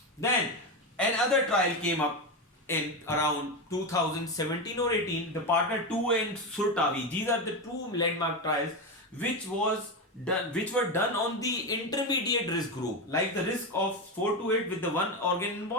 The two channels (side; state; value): both; normal; correlation 0.14